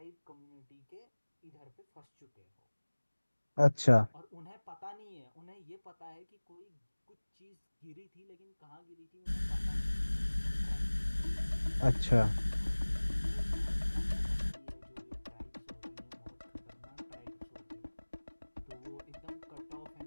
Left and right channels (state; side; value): inverted; both; correlation -1.00